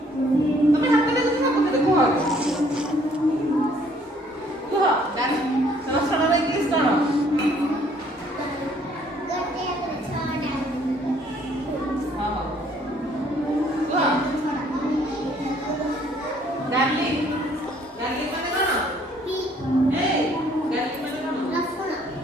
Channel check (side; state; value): both; normal; correlation 0.62